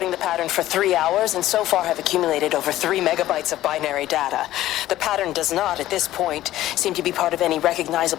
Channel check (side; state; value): right; quieter; 14.5 dB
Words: the pattern for 3 hours, and so far have accumulated over 3 megabytes of binary data. The pattern does not, at this point, seem to be part of any